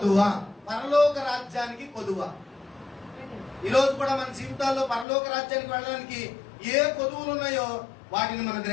పరలోక రాజ్యానికి కొదువ. ఈ రోజు కూడా మన జీవితాల్లో పరలోక రాజ్యానికి వెళ్ళడానికి ఏ కొదువులు ఉన్నాయో వాటిని మనం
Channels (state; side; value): drops out; right; at 5.1 s